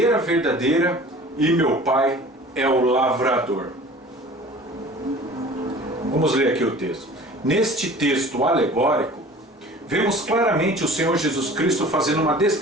verdadeira e meu Pai é o lavrador. Vamos ler aqui o texto. Neste texto alegórico, vemos claramente o Senhor Jesus Cristo fazendo uma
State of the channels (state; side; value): normal; both; correlation 0.44